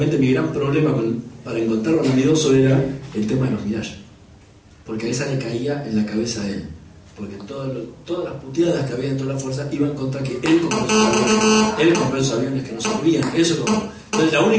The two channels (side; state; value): both; identical; correlation 1.00